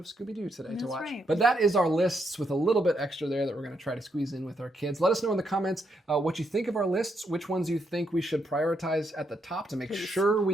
Scooby-Doo today to That's watch. right. But that is our lists with a little bit extra there that we're going to try to squeeze in with our kids. Let us know in the comments what you think of our lists, which ones you think we should prioritize at the top to make sure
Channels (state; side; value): normal; both; correlation 0.78